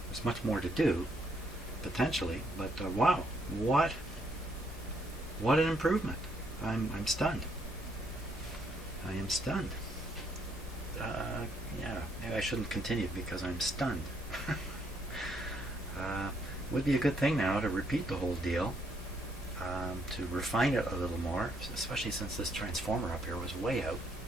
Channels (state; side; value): normal; both; correlation 0.71